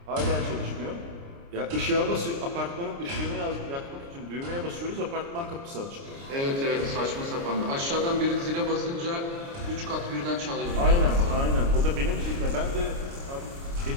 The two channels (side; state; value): left; late; 29 ms